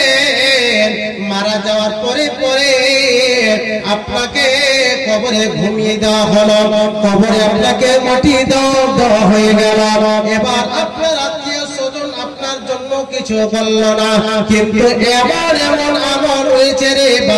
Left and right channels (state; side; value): identical; both; correlation 1.00